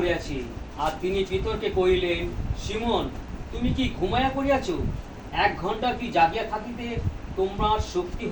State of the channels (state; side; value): identical; both; correlation 1.00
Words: আর তিনি পিতরকে কহিলেন, সিমন, তুমি কি ঘুমাইয়া পড়িয়াছ? 1 ঘন্টা কি জাগিয়া থাকিতে তোমার শক্তি